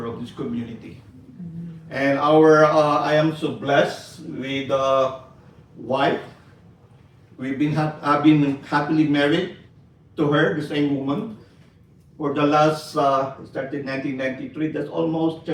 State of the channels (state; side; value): identical; both; correlation 1.00